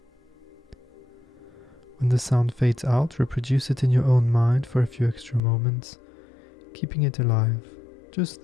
When the sound fades out, reproduce it in your own mind for a few extra moments, keeping it alive, just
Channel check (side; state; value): right; drops out; at 5.4 s